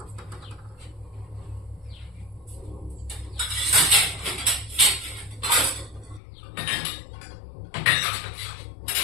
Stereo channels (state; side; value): drops out; right; at 6.2 s